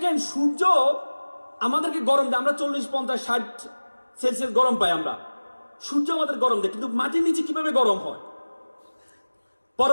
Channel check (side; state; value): both; inverted; correlation -1.00